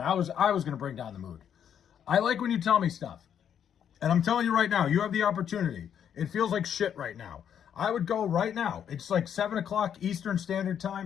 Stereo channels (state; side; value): quieter; right; 8.8 dB